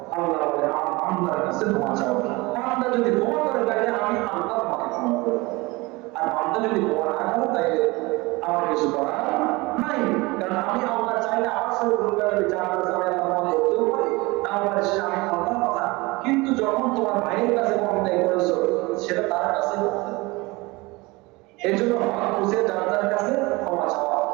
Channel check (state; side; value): quieter; left; 23.3 dB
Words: আল্লাহ বলে আল্লাহর কাছে ক্ষমা চাও। বান্দা যদি ক্ষমা করে তাইলে আমি আল্লাহ তোমাকে ক্ষমা করব, আর বান্দা যদি ক্ষমা না করে তাইলে আমার কিছু করার নাই। কারণ আমি আল্লাহ চাইলে আমার সাথে দুর্গার বিচার করতে আমি আল্লাহ করতেও পারি, না পারে সেটা আমি আল্লাহর কথা। কিন্তু যখন তোমার ভাইয়ের কাছে অন্যায় করেছো, সেটা তার কাছে করতে। এই জন্য হক বুঝে যার কাছে ক্ষমা চাওয়া।